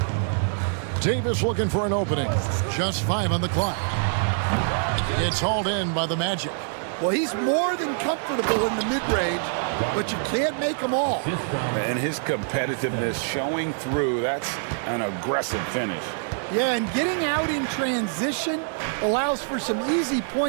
Davis looking for an opening. Just 5 on the clock. It's hauled in by the Magic. Well, he's more than comfortable in the mid-range, but you can't make them all. And his competitiveness showing through. That's an aggressive finish. Yeah, and getting out in transition allows for some easy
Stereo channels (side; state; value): left; silent; 62 dB below the other